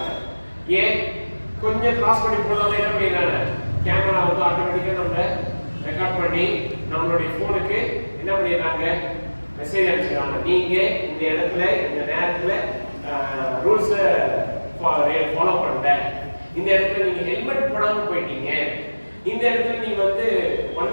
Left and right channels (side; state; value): both; inverted; correlation -1.00